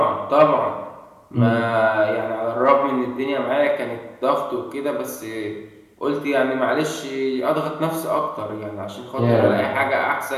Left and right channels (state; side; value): identical; both; correlation 1.00